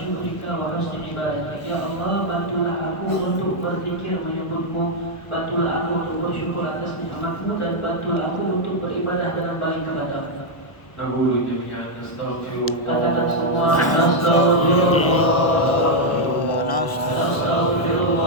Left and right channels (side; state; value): right; late; 1.2 ms